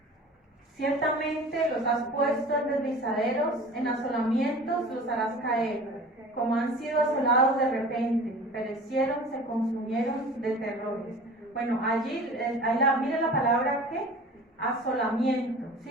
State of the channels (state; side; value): normal; both; correlation 0.41